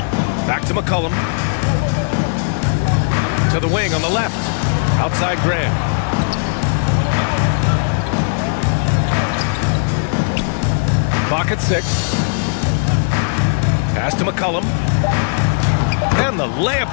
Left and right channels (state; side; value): silent; right; digital silence